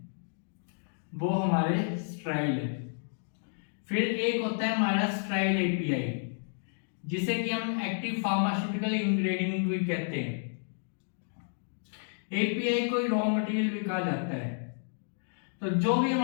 वो हमारे स्ट्राइल है। फिर एक होता है हमारा स्ट्राइल एपीआई, जिसे कि हम एक्टिव फार्मास्यूटिकल इंग्रेडिएंट भी कहते हैं। एपीआई कोई रॉ मटेरियल भी कहा जाता है। तो जो भी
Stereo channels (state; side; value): silent; right; digital silence